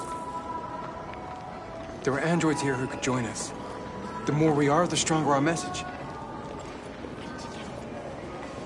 There are androids here who could join us. The more we are, the stronger our message.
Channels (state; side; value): identical; both; correlation 1.00